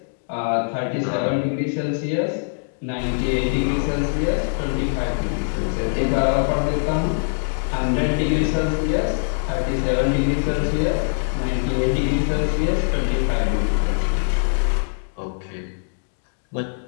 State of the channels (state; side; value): silent; right; digital silence